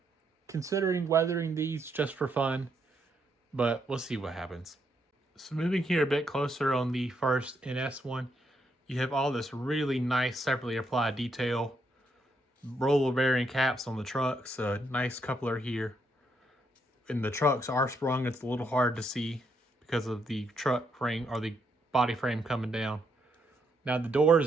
considering weathering these just for fun, but we'll see what happens. So moving here a bit closer on the first NS one, you have all this really nice separately applied detail. Roller bearing caps on the trucks, a nice coupler here. And the trucks are sprung, it's a little hard to see because of the truck frame or the body frame coming down. Now the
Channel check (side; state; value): both; normal; correlation 0.77